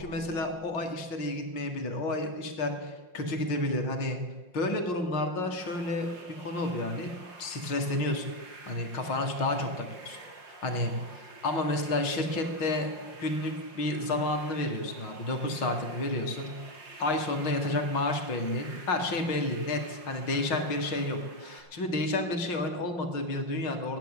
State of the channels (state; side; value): late; right; 5.6 ms